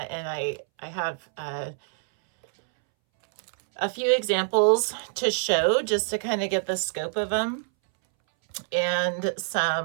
and I have a few examples to show just to kind of get the scope of them, and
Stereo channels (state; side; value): silent; left; 61 dB below the other